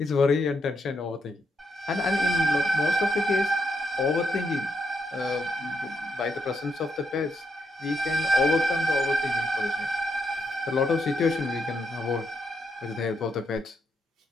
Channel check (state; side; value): normal; both; correlation 0.79